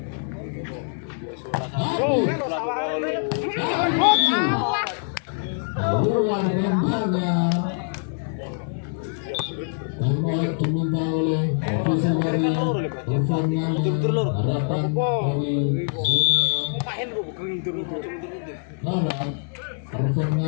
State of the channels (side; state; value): right; silent; digital silence